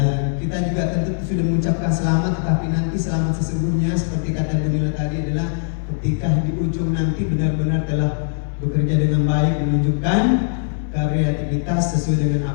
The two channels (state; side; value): silent; right; digital silence